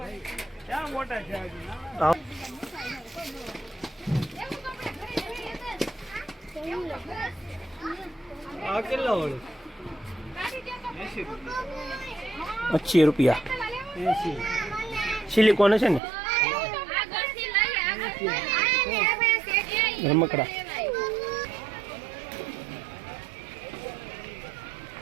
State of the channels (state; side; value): drops out; left; at 16.0 s